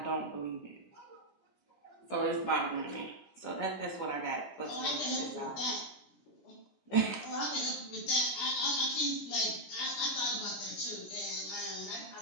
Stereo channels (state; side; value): late; right; 17 ms